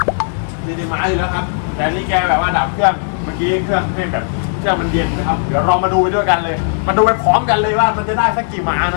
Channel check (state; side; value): silent; right; 69 dB below the other